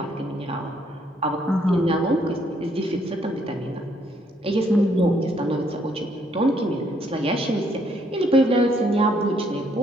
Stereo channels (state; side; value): normal; both; correlation 0.70